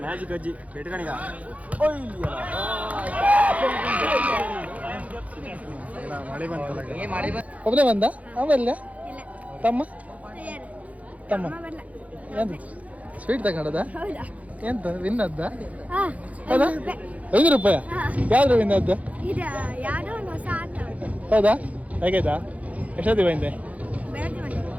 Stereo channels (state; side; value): late; left; 0.068 ms